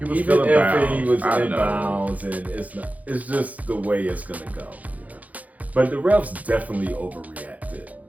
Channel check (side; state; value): left; late; 0.075 ms